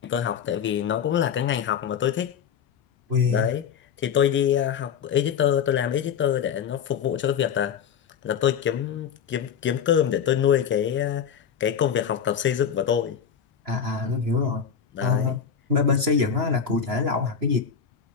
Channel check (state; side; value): quieter; right; 7.5 dB